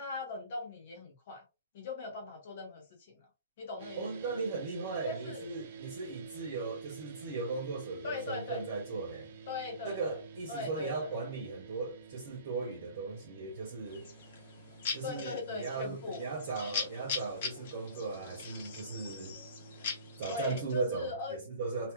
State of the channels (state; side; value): inverted; both; correlation -0.45